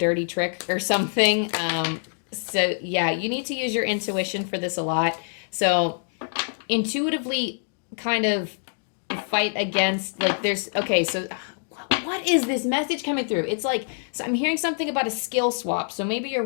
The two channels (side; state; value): right; silent; digital silence